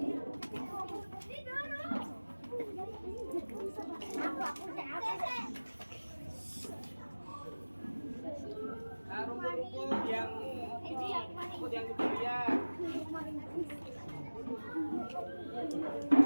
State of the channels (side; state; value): both; inverted; correlation -1.00